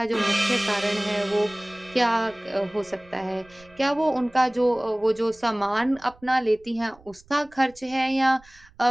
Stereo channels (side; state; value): right; noise; rumble, 27 dB below the sound